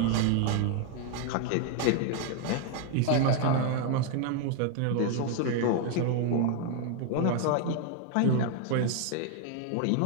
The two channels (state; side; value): different; both; correlation 0.00